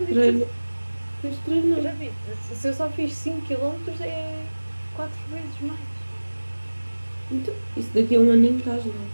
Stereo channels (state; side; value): inverted; both; correlation -1.00